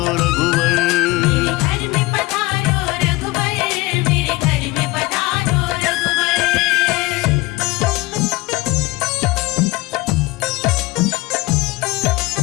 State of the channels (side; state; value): right; quieter; 21.1 dB